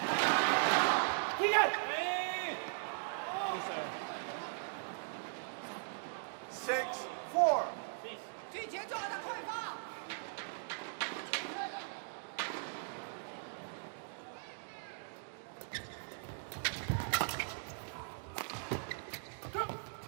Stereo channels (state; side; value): silent; left; digital silence